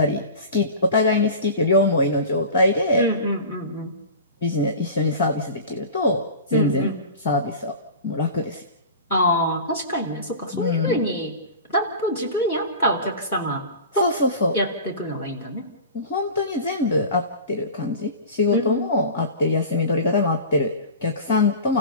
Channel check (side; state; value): both; inverted; correlation -0.34